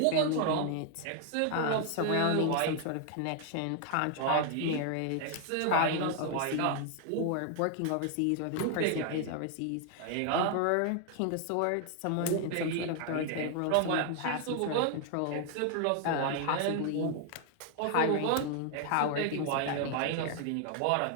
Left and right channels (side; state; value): both; different; correlation 0.00